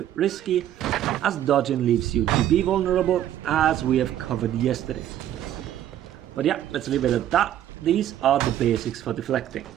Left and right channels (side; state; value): left; quieter; 11.7 dB